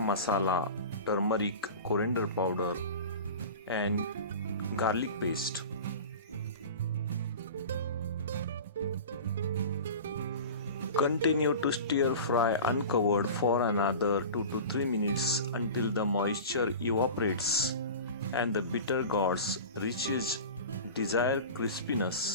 turmeric, coriander powder and garlic paste. Continue to stir fry uncovered for another 2 to 3 minutes until the moisture evaporates and the Bittergourd reaches desired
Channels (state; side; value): inverted; both; correlation -0.34